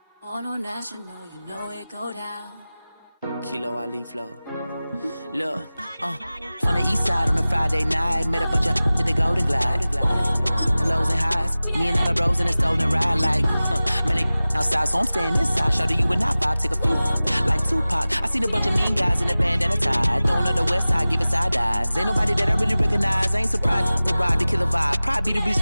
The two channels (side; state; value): both; inverted; correlation -0.97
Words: On a national, you know it go down. Kilo Ali flow. Look, from the east side on a Friday night, met a bunch of to the Golden Glide. The lows and highs, me and all the bros in the stolen ride, like, man, they outside, so I'm staying inside. Show you and I vibe, take a few, like Tupac. I seen a bunch of mean guys in the band and a tie, throwing up the west side, giving side eyes. Ain't nobody that I really recognize, I ain't surprised to ride the killer vibe. Probably be the